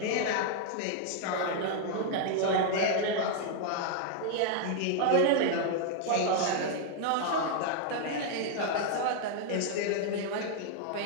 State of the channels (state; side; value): different; both; correlation 0.00